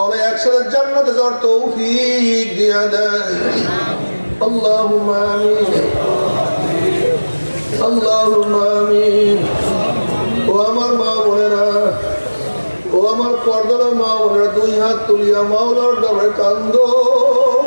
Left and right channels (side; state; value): both; inverted; correlation -1.00